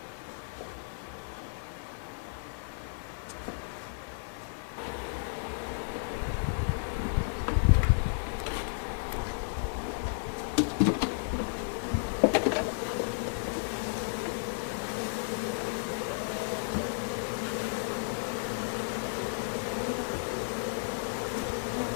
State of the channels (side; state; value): right; silent; 56 dB below the other